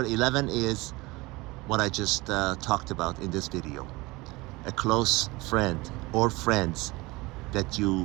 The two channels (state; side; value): quieter; left; 22.5 dB